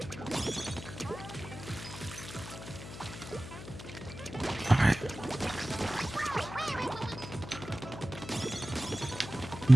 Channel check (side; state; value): left; noise; hum, 12 dB below the sound